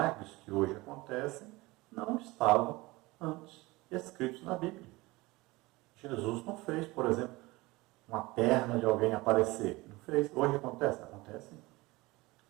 que hoje acontecem não estavam antes escritos na Bíblia. Jesus não fez, por exemplo, uma perna de alguém aparecer. Não fez. Hoje acontece? Acontece.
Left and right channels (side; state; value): left; quieter; 21.7 dB